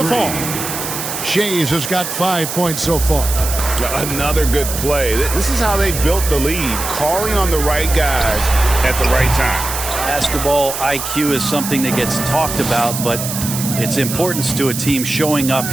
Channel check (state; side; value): noise; right; hiss, 5 dB below the sound